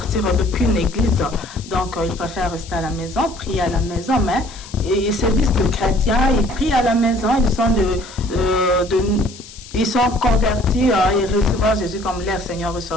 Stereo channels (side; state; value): left; noise; hiss, 18 dB below the sound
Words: d'aucune église. Donc, ils préfèrent rester à la maison, prier à la maison, mais ils se disent que chrétiens, ils prient à la maison, ils sont convertis, ils reçoivent Jésus comme leur Seigneur